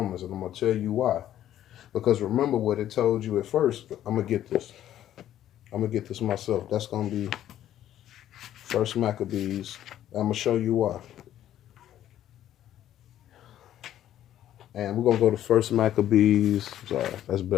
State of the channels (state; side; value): quieter; right; 11.9 dB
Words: and I'm gonna tell you why. Because remember what it told you at first. I'm gonna get this myself. That's gonna be First Maccabees. I'm gonna show you why. And we're gonna go to First Maccabees. Sorry, that's